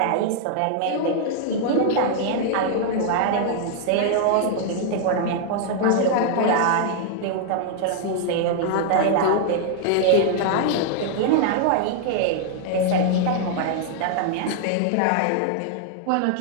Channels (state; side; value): different; both; correlation -0.01